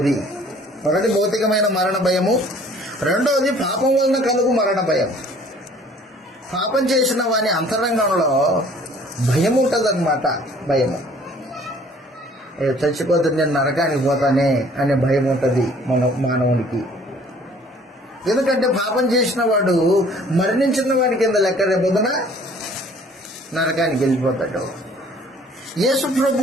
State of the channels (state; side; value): normal; both; correlation 0.55